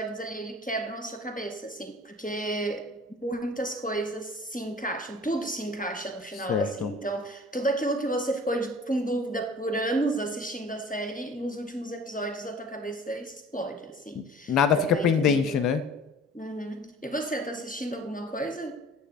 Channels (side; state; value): both; normal; correlation 0.46